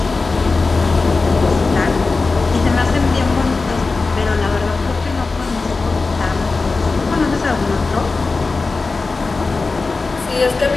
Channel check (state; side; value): quieter; right; 3.9 dB